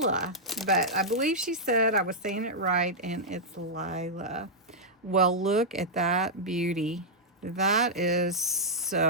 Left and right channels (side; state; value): both; normal; correlation -0.08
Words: But I believe she said I was saying it right, and it's Lila. Well, look at that beauty. That is